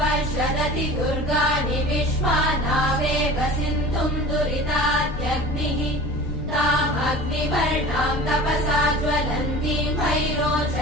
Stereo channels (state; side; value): noise; left; rumble, 7 dB below the sound